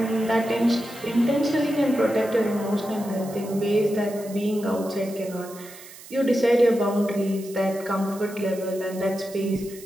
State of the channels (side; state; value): right; noise; hiss, 18 dB below the sound